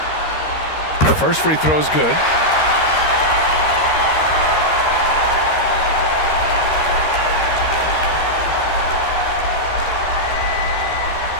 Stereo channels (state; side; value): late; right; 13 ms